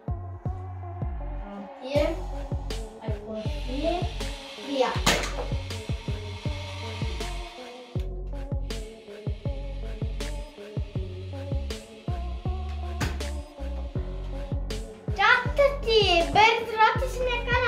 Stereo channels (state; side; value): identical; both; correlation 1.00